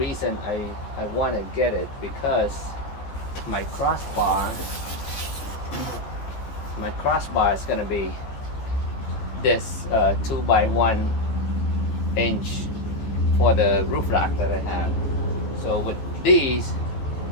I want to get it, because my crossbar is gonna be this 2x1 inch for the roof rack that I have. So with these,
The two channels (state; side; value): late; right; 15 ms